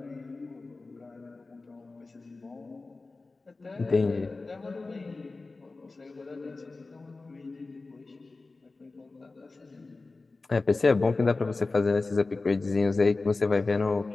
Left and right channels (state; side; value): quieter; right; 3.6 dB